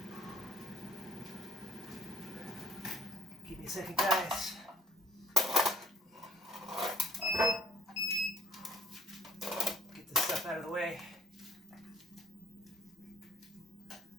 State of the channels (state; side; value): normal; both; correlation 0.54